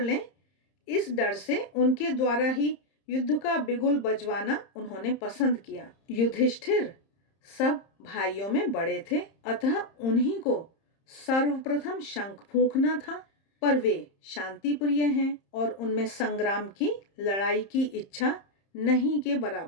इस डर से उनके द्वारा ही युद्ध का बिगुल बजवाना उन्होंने पसंद किया। युधिष्ठिर सब भाइयों में बड़े थे, अतः उन्हीं को सर्वप्रथम शंख फूंकना था, पर वे शांति प्रिय हैं और उनमें संग्राम की, लड़ाई की इच्छा नहीं के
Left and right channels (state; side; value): late; right; 30 ms